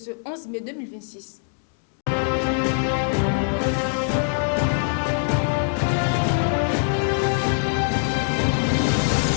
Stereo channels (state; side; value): silent; right; digital silence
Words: 11 mai 2026.